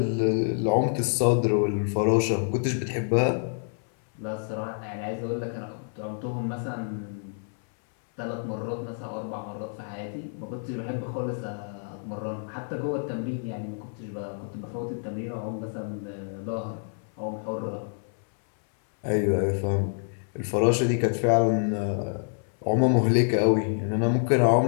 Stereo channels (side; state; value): right; silent; 60 dB below the other